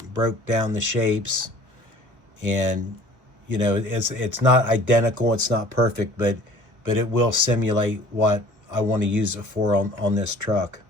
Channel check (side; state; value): left; late; 1.3 ms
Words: broke down the shapes. And you know, it's not identical, it's not perfect, but it will simulate what I want to use it for on this truck.